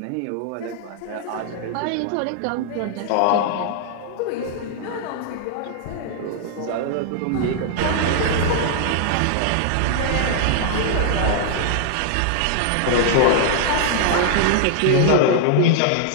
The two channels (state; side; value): different; both; correlation 0.00